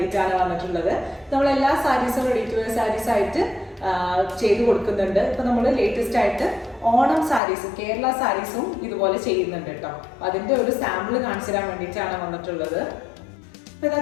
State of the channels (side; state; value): right; drops out; at 7.4 s